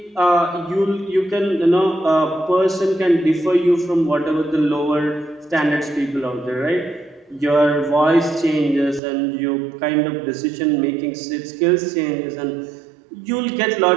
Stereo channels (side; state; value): left; drops out; at 9.0 s